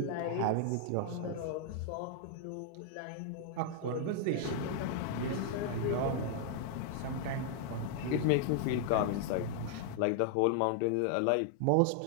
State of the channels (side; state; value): both; different; correlation 0.00